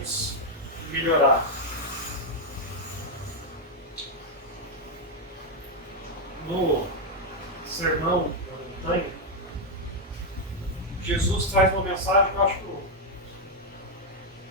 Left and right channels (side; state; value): both; normal; correlation 0.00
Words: e melhorar. No Sermão da Montanha, Jesus traz uma mensagem que eu acho